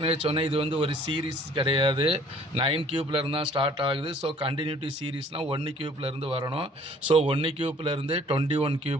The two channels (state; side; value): normal; both; correlation 0.55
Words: சொன்னேன், இது வந்து ஒரு சீரீஸ் கிடையாது. 9 கியூப்லேருந்து தான் ஸ்டார்ட் ஆகுது. ஸோ கண்டினியூட்டி சீரீஸ்னால் 1 கியூப்லேருந்து வரணும். ஸோ 1 கியூப்லேருந்து 21